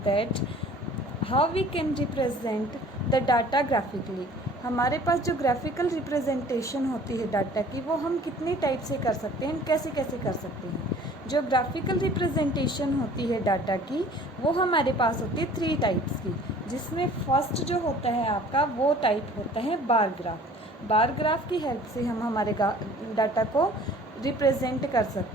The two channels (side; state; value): both; normal; correlation 0.50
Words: that how we can represent the data graphically. हमारे पास जो graphical representation होती है data की वो हम कितने type से कर सकते हैं, कैसे कैसे कर सकते हैं. जो ग्राफिकल रिप्रेजेंटेशन होती है डाटा की वो हमारे पास होती है 3 टाइप्स की, जिसमें फर्स्ट जो होता है आपका वो टाइप होता है बार ग्राफ. बार ग्राफ की हेल्प से हम हमारे डाटा को रिप्रेजेंट कर